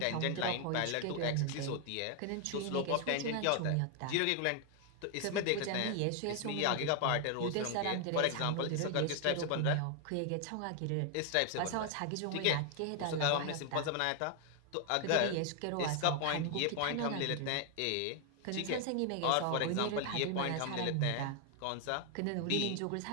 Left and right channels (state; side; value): different; both; correlation 0.00